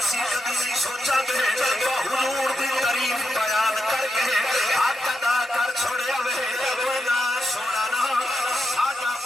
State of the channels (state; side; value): normal; both; correlation 0.86